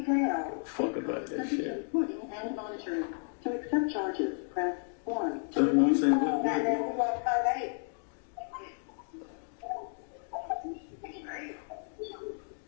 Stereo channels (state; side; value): silent; right; 56 dB below the other